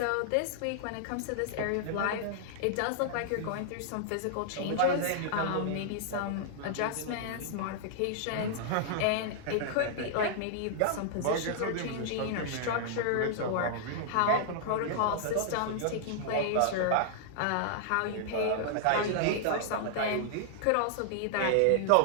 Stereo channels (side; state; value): both; different; correlation -0.01